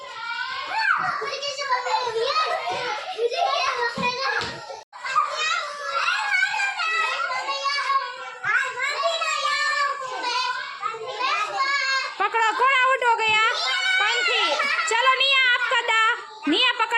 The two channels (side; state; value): both; identical; correlation 1.00